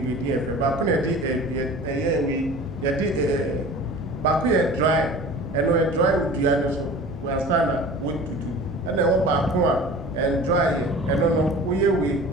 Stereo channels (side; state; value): right; noise; rumble, 17 dB below the sound